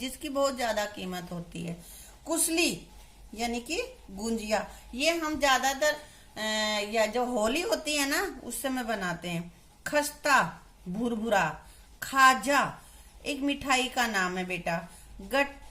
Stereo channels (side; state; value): both; identical; correlation 1.00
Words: बहुत ज्यादा कीमत होती है। कुसली यानी कि गुंजिया, ये हम ज्यादातर या जो होली होती है ना उस समय बनाते हैं। खस्ता भुरभुरा। खाजा एक मिठाई का नाम है बेटा।